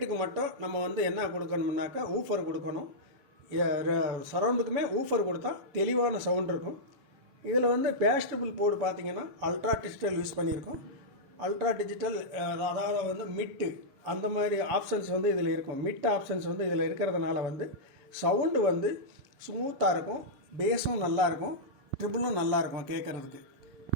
மட்டும் நம்ம வந்து என்ன கொடுக்கணும்னாக்கா ஊஃபர் கொடுக்கணும். சரவுண்டுக்குமே ஊஃபர் கொடுத்தா தெளிவான சவுண்ட் இருக்கும். இதில் வந்து பேஸ்டபிள் போர்டு பார்த்தீங்கன்னா அல்ட்ரா டிஜிட்டல் யூஸ் பண்ணியிருக்கோம். அல்ட்ரா டிஜிட்டல் அதாவது வந்து மிட்டு அந்த மாதிரி ஆப்ஷன்ஸ் வந்து இதில் இருக்கும். மிட் ஆப்ஷன்ஸ் வந்து இதில் இருக்கிறதுனால வந்து சவுண்டு வந்து ஸ்மூத்தாக இருக்கும், பேஸும் நல்லாயிருக்கும், ட்ரிபிளும் நல்லாயிருக்கும் கேட்குறதுக்கு.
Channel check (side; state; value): left; late; 7.1 ms